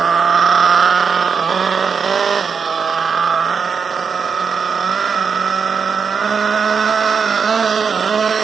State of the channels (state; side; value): quieter; left; 6.0 dB